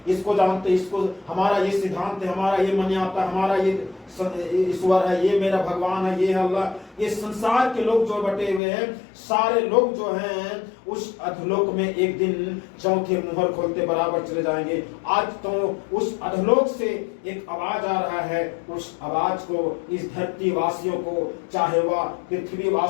जानते हैं, इसको हमारा ये सिद्धांत है, हमारा ये मन आता है, हमारा ये ईश्वर है, ये मेरा भगवान है, ये अल्लाह। ये संसार के लोग जो बटे हुए हैं, सारे लोग जो हैं उस अधोलोक में एक दिन चौथे मुहर खोलते बराबर चले जाएंगे। आज तो उस अधोलोक से एक आवाज आ रहा है, उस आवाज को इस धरती वासियों को, चाहे वह पृथ्वी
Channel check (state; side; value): drops out; right; at 8.6 s